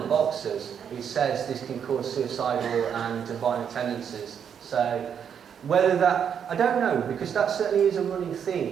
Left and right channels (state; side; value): quieter; left; 7.9 dB